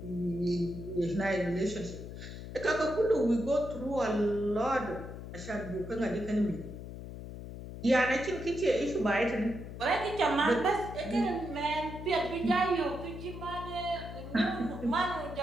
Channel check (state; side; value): noise; left; hum, 10 dB below the sound